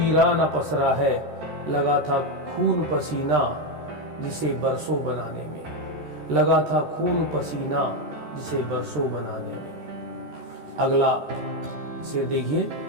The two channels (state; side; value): late; left; 13 ms